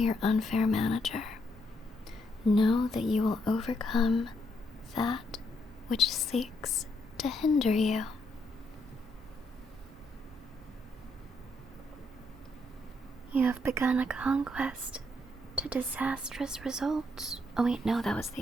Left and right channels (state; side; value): normal; both; correlation 0.75